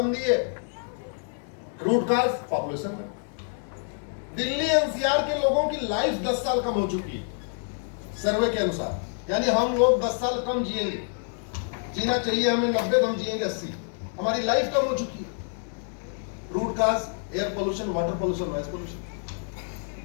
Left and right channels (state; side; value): silent; right; 60 dB below the other